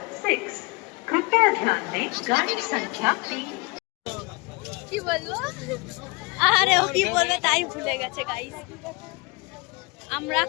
6 कृपया ध्यान दें गाड़ी संख्या 3। কি বলবো? আরে ও কি বলবে তাই ভুলে গেছে গাইস। আমরা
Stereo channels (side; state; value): right; quieter; 26.8 dB